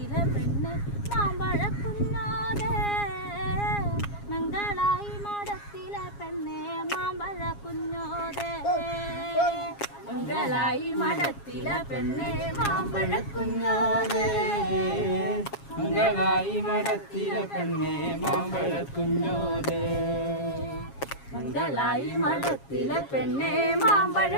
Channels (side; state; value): right; late; 7.3 ms